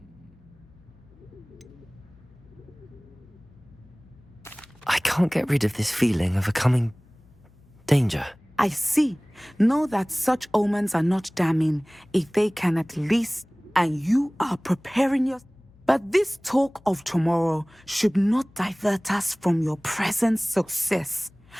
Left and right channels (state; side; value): noise; left; hum, 28 dB below the sound